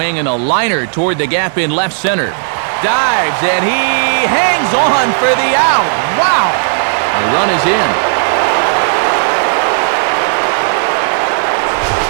and a liner toward the gap in left center. Dives, and he hangs on for the out. Wow! The run is in.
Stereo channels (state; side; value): silent; left; digital silence